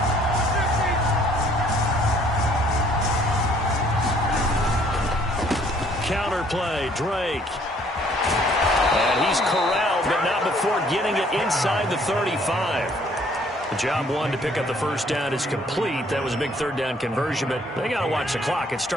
Counter play, Drake. And he's corralled, but not before getting it inside the 35. The job one to pick up the first down is complete. That was a big third down conversion, but they got to watch the clock. It's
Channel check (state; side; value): normal; both; correlation 0.61